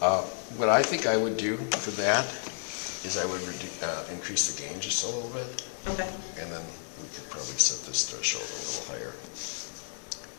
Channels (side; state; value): right; silent; digital silence